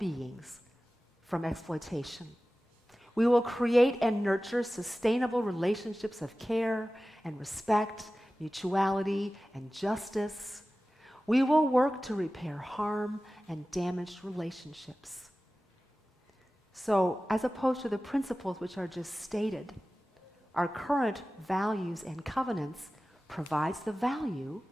from exploitation. We will create and nurture sustainable relationships of care and respect, mutuality and justice. We will work to repair harm and damaged relationships. So, as opposed to the principles which are just stated, our current values and covenants provides the value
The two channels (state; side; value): normal; both; correlation 0.96